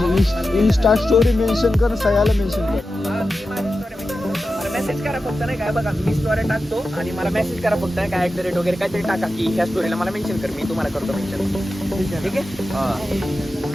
इंस्टा स्टोरी मेन्शन कर. सयाला मेन्शन कर. मला मेसेज करा फक्त नाही काय बघा. मी स्टोरी टाकतो आणि मला मेसेज करा फक्त नाही काय @ वगैरे काहीतरी टाका की ह्या स्टोरीला मला मेन्शन कर. मी तुम्हाला करतो मेन्शन. ठीक आहे.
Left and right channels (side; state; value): both; normal; correlation 0.92